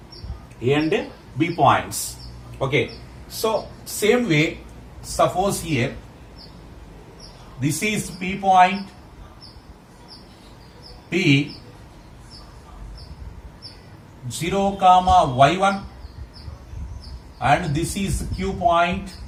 A and B points. Okay, so same way, suppose here this is P point, P 0 comma y1 and this is Q point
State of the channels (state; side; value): identical; both; correlation 1.00